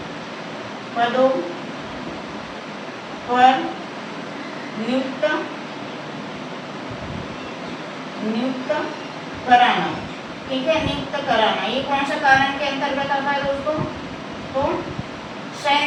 पदों पर नियुक्त कराना। ठीक है, नियुक्त कराना ये कौन सा कारण के अंतर्गत आता है दोस्तों? तो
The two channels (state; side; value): identical; both; correlation 1.00